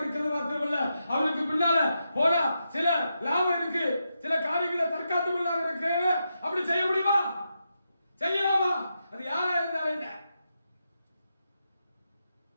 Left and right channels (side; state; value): both; inverted; correlation -0.86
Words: மாத்திரமல்ல, அவனுக்கு பின்னால போனா சில லாபம் இருக்கு, சில காரியங்களை தற்காத்துக் கொள்ளாக இருக்கு. அப்படி செய்ய முடியுமா? செய்யலாமா? அது யாரா இருந்தாலும் என்ன?